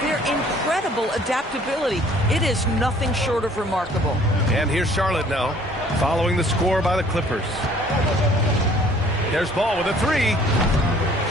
their incredible adaptability. It is nothing short of remarkable. And here's Charlotte now, following the score by the Clippers. There's Ball with a 3.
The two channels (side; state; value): both; normal; correlation 0.56